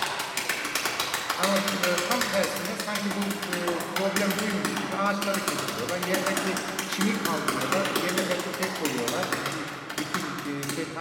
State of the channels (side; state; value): both; identical; correlation 1.00